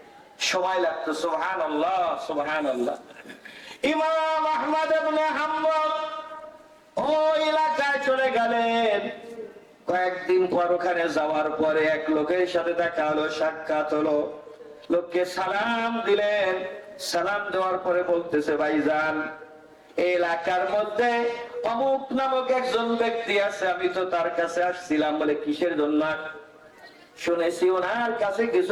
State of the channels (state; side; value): identical; both; correlation 1.00